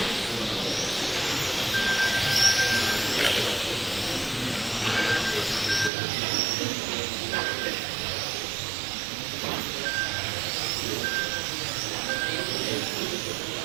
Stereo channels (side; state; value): left; drops out; at 5.9 s